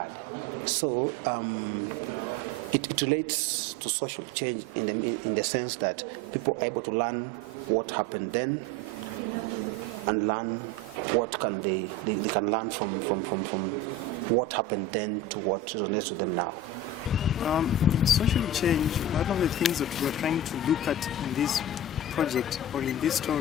So it relates to social change in the sense that people are able to learn what happened then and learn what they can learn from what happened then to what resonates with them now. Social change, one of the things that we're trying to look at in this project or in this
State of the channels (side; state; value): both; normal; correlation 0.30